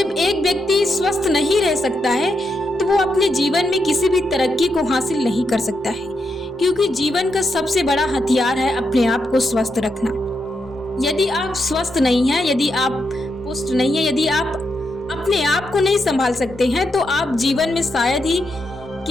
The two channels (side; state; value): both; normal; correlation 0.83